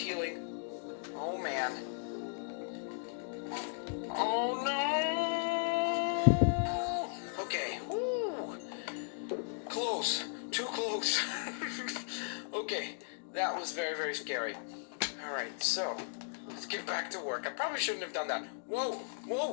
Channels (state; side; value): silent; right; digital silence